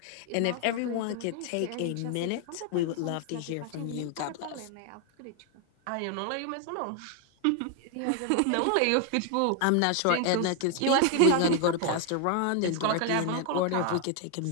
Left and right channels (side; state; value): both; different; correlation 0.00